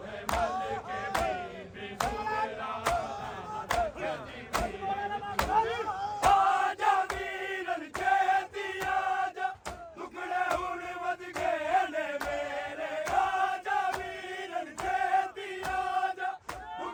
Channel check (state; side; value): identical; both; correlation 1.00